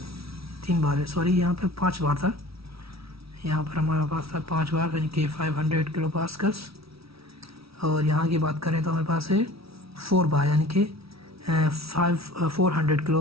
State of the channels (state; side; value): late; left; 0.76 ms